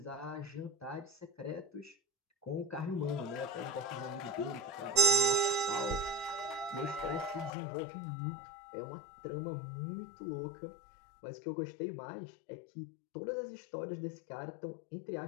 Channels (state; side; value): drops out; right; at 7.5 s